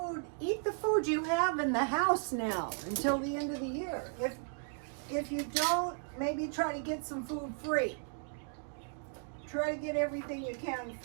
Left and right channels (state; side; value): silent; left; 54 dB below the other